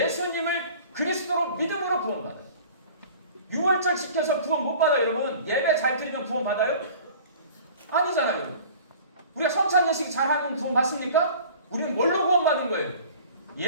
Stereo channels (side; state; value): both; inverted; correlation -0.45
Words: 그리스도로 믿음으로 구원받아요. 유월절 지켜서 구원 못 받아요. 여러분, 예배 잘 드리면 구원 받아요? 아니잖아요. 우리가 성찬 예식 잘하면 구원 받습니까? 우리는 뭘로 구원 받은 거예요?